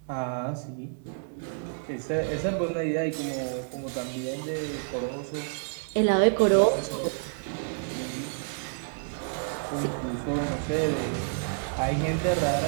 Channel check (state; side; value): silent; left; digital silence